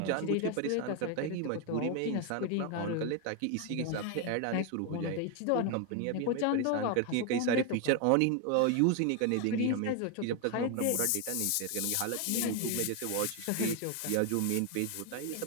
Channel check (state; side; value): different; both; correlation 0.01